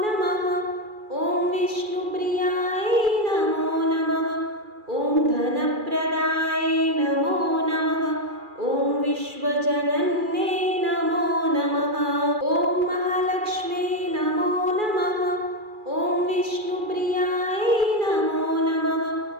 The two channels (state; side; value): late; left; 2.4 ms